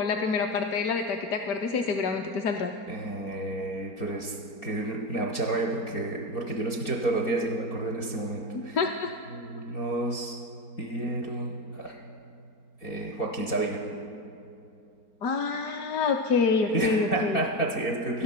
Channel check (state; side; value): late; right; 4.4 ms